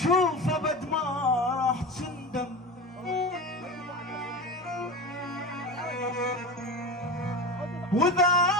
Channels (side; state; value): both; normal; correlation 0.27